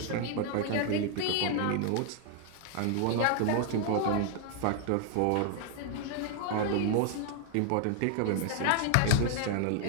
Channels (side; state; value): both; different; correlation 0.00